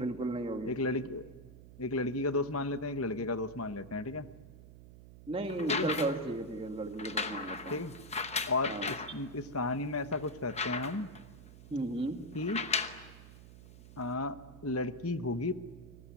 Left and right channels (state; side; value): noise; right; hum, 17 dB below the sound